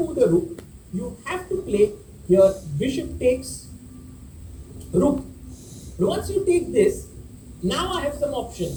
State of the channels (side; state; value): both; identical; correlation 1.00